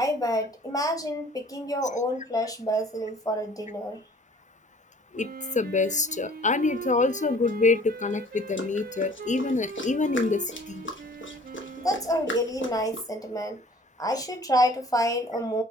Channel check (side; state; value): both; normal; correlation 0.51